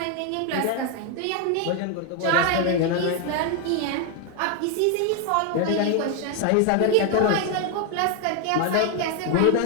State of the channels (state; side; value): different; both; correlation 0.01